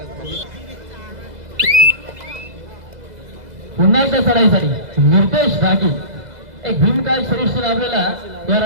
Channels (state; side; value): late; left; 2.0 ms